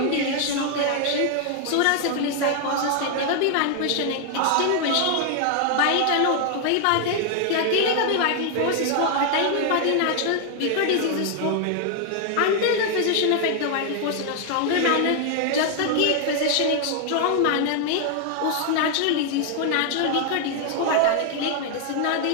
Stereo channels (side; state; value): both; different; correlation 0.00